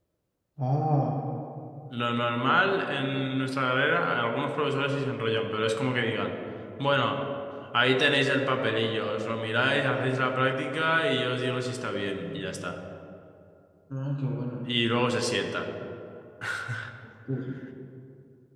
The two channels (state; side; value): identical; both; correlation 1.00